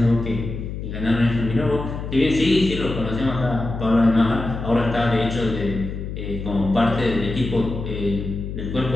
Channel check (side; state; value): left; noise; hum, 7 dB below the sound